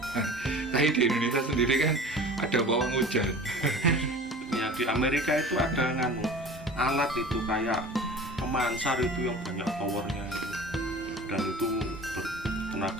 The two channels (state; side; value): normal; both; correlation 0.40